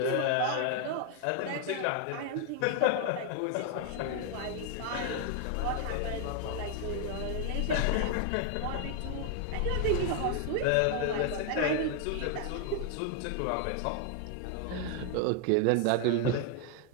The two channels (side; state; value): both; different; correlation 0.00